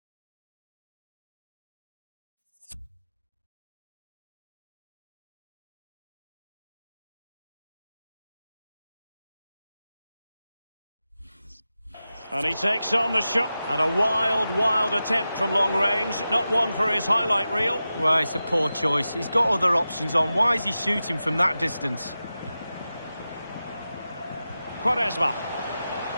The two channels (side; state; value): both; inverted; correlation -0.93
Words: And he takes on the shot. And a wild attempt from long range. Not one for his highlight reel. Well, it's a poor choice. He's got other options on. Why is he shooting from that distance? Quaresma.